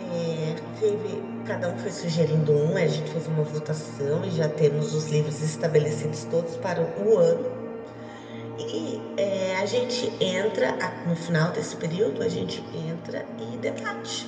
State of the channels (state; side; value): identical; both; correlation 1.00